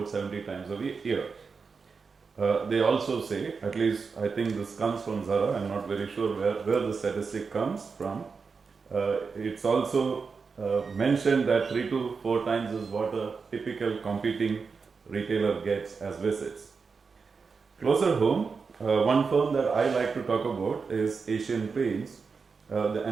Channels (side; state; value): left; quieter; 5.1 dB